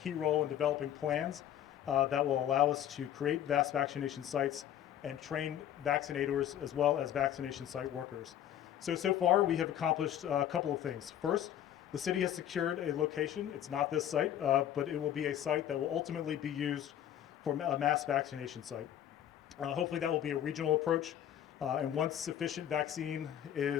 role in developing plans that will allow us to create mass vaccination sites and train vaccinators as well as vaccination site workers. So far we have accomplished a couple of things. First, the city has secured a location. It's not this site, but it will be a site that will ultimately be used for a mass vaccination site. Hopefully that will be a regional approach, and once sufficient vaccine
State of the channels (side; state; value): right; quieter; 10.8 dB